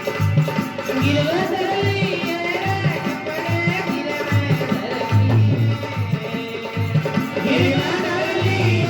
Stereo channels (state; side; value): identical; both; correlation 1.00